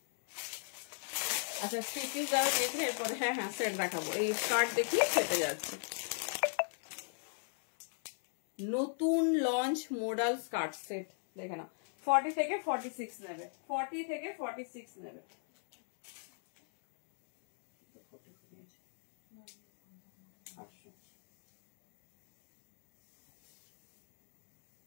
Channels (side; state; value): right; silent; digital silence